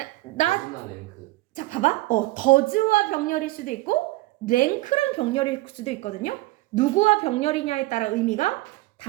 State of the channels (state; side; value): quieter; left; 19.5 dB